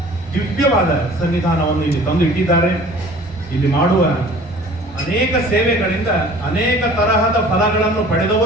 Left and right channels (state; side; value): normal; both; correlation 0.48